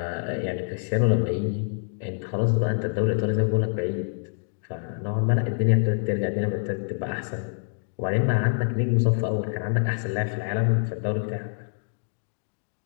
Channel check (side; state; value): right; silent; digital silence